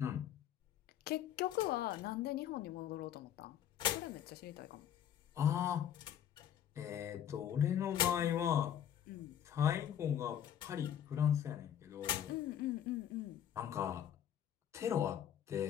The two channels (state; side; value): quieter; right; 10.1 dB